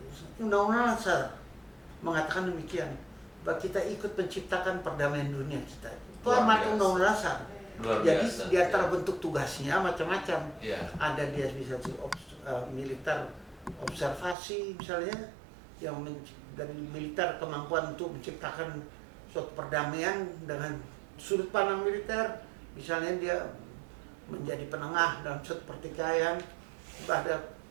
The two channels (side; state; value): left; drops out; at 14.4 s